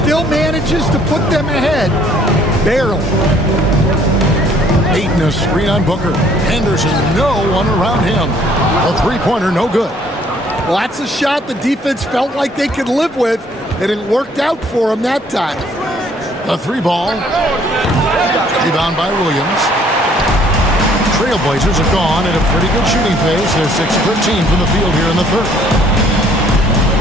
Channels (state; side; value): normal; both; correlation 0.61